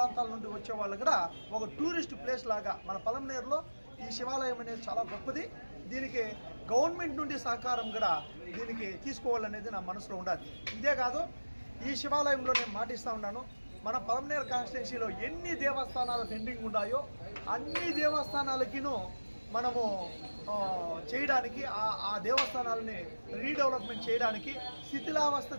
నుండి వచ్చే వాళ్ళు కూడా ఒక టూరిస్ట్ ప్లేస్ లాగా మన పలమనేరులో ఈ శివాలయం అనేది చాలా గొప్పది. దీనికి గవర్నమెంట్ నుండి సహకారం కూడా దీనికి తీసుకోవాలనేది నా మనసులో ఉండాలి. ఇదే కాదు, ఈ శివాలయంలో నేను మాటిస్తూ ఉన్నాను, మన పలమనేరు కాన్స్టిట్యున్సీలో ఎన్ని దేవస్థానాలు పెండింగ్ ఉన్నాయో అన్ని దేవస్థానాలకిను మనము చేయడానికి ఆ దేవస్థానాలని రీడెవలప్మెంట్ చేయడానికి శిథిలావస్థ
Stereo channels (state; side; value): inverted; both; correlation -1.00